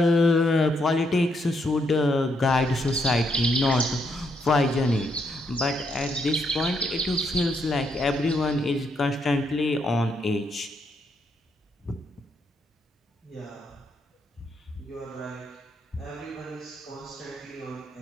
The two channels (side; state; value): both; normal; correlation 0.76